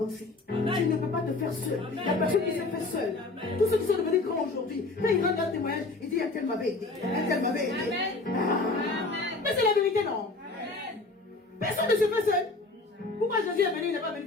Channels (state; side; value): quieter; right; 3.4 dB